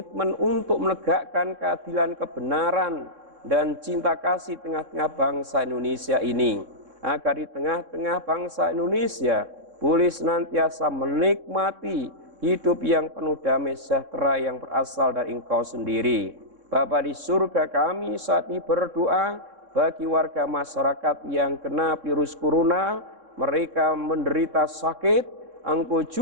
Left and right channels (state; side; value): late; left; 3.6 ms